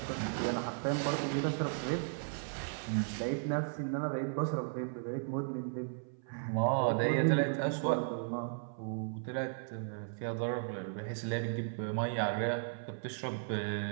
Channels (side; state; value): left; silent; 54 dB below the other